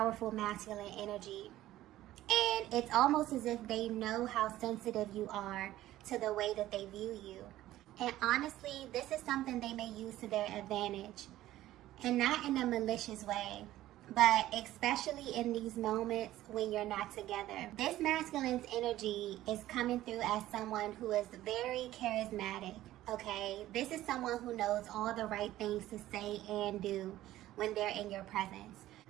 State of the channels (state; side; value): quieter; left; 14.7 dB